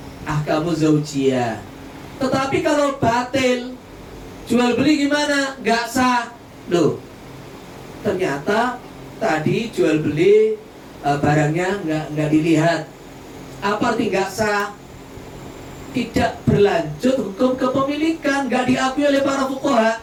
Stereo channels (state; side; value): identical; both; correlation 1.00